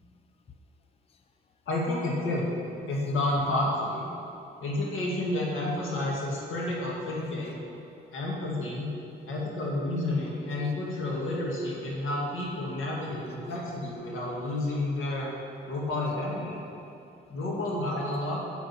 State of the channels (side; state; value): both; normal; correlation 0.48